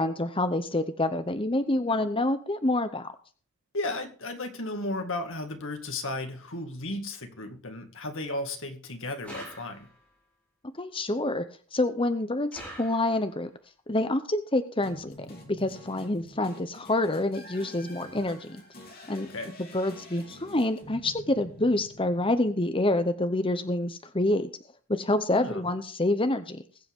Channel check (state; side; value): normal; both; correlation 0.56